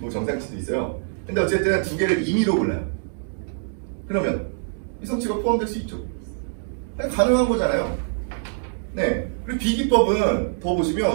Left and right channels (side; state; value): left; silent; 62 dB below the other